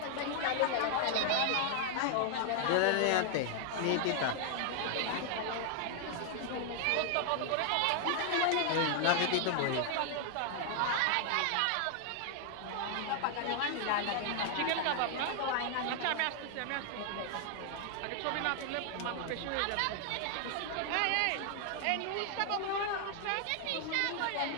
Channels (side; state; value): both; different; correlation 0.00